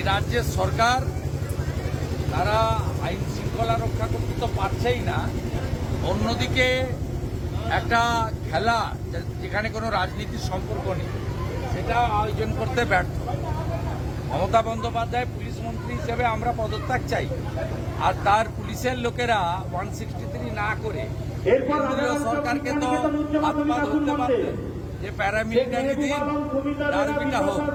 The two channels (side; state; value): both; identical; correlation 1.00